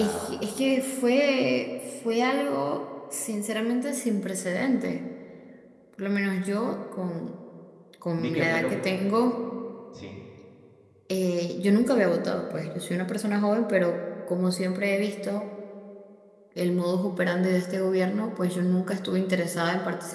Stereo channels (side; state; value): both; identical; correlation 1.00